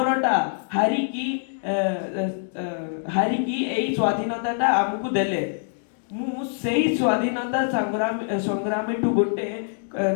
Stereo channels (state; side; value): silent; right; digital silence